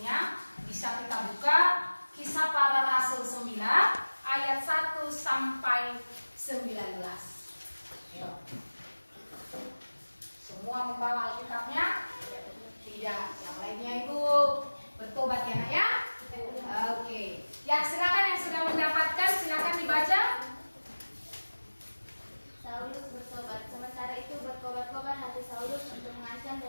Bisa kita buka Kisah Para Rasul 9 ayat 1 sampai 19. Ayo. Semua membawa Alkitabnya? Tidak. Yang lainnya itu bertobat ya, Nak ya? Oke. Ya, silakan yang sudah mendapatkan silakan dibaca. Saulus bertobat. Sementara itu berkobar-kobar hati Saulus untuk mengancam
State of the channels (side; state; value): both; inverted; correlation -1.00